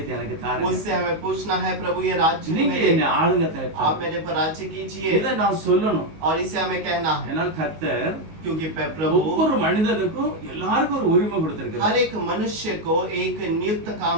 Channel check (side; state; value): left; late; 19 ms